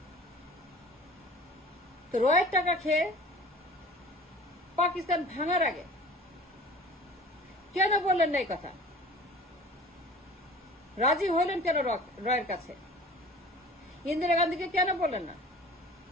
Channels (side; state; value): both; normal; correlation 0.43